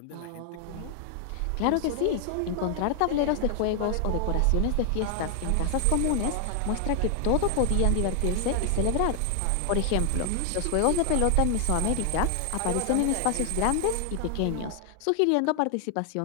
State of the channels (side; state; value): both; different; correlation 0.00